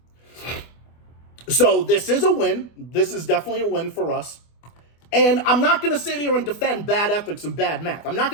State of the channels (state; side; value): late; right; 24 ms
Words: So this is a win. This is definitely a win for us. And I'm not going to sit here and defend bad ethics and bad math. I'm not